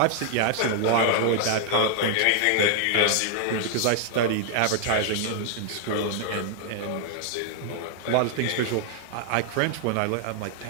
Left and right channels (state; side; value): different; both; correlation 0.00